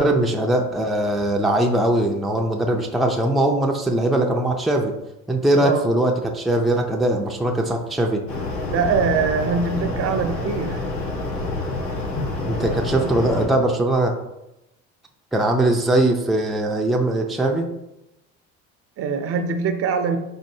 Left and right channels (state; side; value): normal; both; correlation 0.49